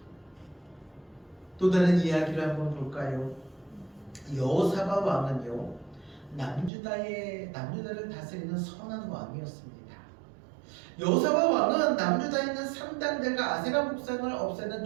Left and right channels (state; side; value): drops out; left; at 6.7 s